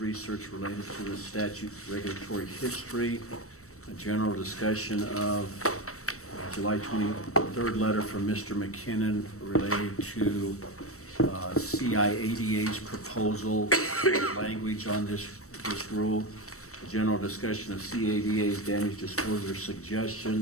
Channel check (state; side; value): late; right; 0.64 ms